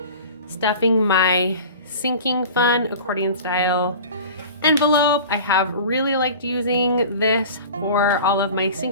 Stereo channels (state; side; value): inverted; both; correlation -0.39